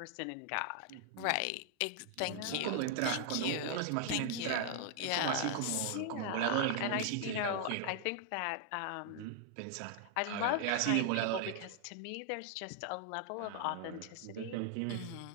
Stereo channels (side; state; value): both; different; correlation 0.00